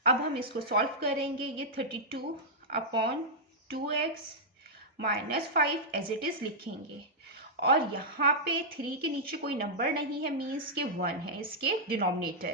अब हम इसको सॉल्व करेंगे। ये 32/2x -5 एज इट इज लिखेंगे और यहाँ पे 3 के नीचे कोई नंबर नहीं है, मीन्स के 1 है इसके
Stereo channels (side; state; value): both; normal; correlation -0.08